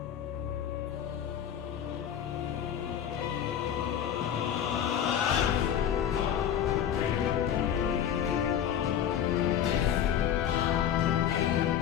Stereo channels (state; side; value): quieter; right; 9.6 dB